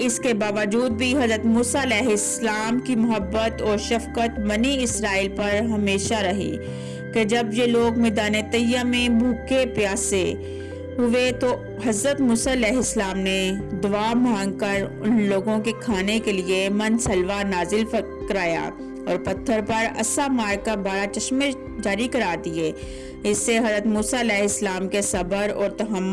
کے باوجود بھی حضرت موسیٰ علیہ السلام کی محبت اور شفقت بنی اسرائیل پر ہمیشہ رہی کہ جب یہ لوگ میدان طیہ میں بھوکے پیاسے ہوئے تو حضرت موسیٰ علیہ السلام نے دعا مانگ کر ان لوگوں کے کھانے کے لیے من سلوا نازل کرایا اور پتھر پر عصا مار کر 12 چشمے جاری کرا دیے۔ اس سے حضرت موسیٰ علیہ السلام کے صبر اور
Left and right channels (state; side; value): identical; both; correlation 1.00